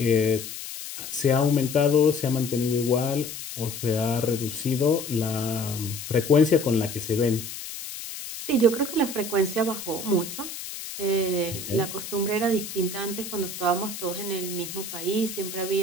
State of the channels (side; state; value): left; noise; hiss, 9 dB below the sound